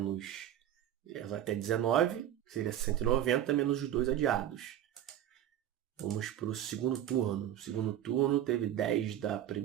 até 19, seria 190 menos os 2 adiados. Vamos para o segundo turno. O segundo turno teve 10 da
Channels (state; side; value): quieter; left; 11.5 dB